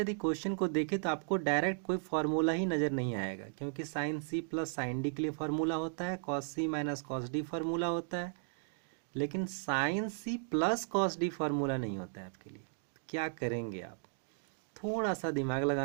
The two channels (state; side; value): silent; left; digital silence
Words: यदि क्वेश्चन को देखें तो आपको डायरेक्ट कोई फार्मूला ही नज़र नहीं आएगा, क्योंकि sine C plus sine D के लिए फार्मूला होता है, cos C minus cos D formula होता है, लेकिन sine C plus cos D formula नहीं होता है आपके लिए। तो क्या करेंगे आप? थोड़ा सा दिमाग